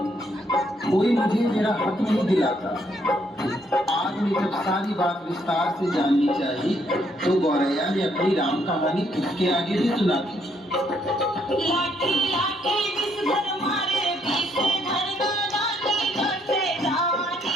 कोई मुझे मेरा हक नहीं दिलाता। आग ने जब सारी बात विस्तार से जाननी चाहिए तो गौरैया ने अपनी राम कहानी उसके आगे भी सुना दी। लाठी लाठी विषधर मारे, विषधर दादानी डसे,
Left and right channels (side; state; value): both; normal; correlation 0.71